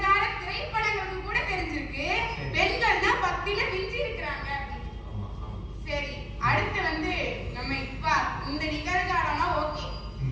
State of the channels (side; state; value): both; identical; correlation 1.00